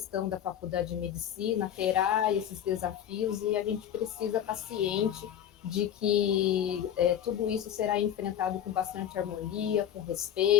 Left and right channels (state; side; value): quieter; right; 10.2 dB